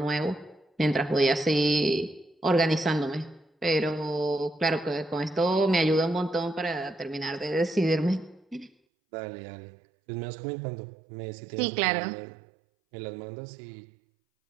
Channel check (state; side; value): drops out; left; at 8.7 s